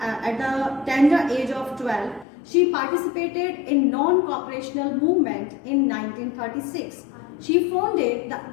the tender age of 12, she participated in non-cooperational movement in 1936. She founded the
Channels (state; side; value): drops out; right; at 2.2 s